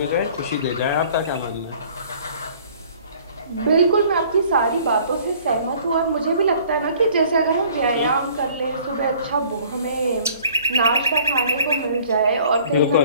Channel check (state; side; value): inverted; both; correlation -0.54